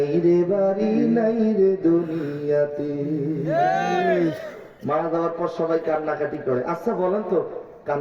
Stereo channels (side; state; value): both; identical; correlation 1.00